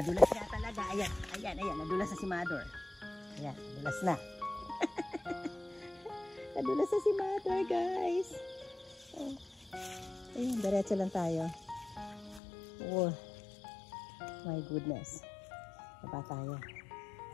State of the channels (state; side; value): drops out; right; at 12.4 s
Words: na talaga. Ayan. Ayan. Ayan. Nadulas na si Mother. Ayan. Nadulas na. Nadulas na si Mother guys. Ayan. Diretso lang tayo. Oh, my goodness. Baba tayo.